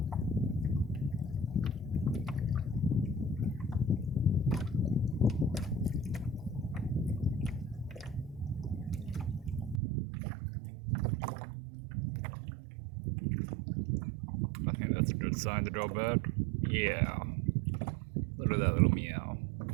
I think that's a good sign to go back. Yeah. Look at that little meow.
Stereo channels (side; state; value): left; drops out; at 9.8 s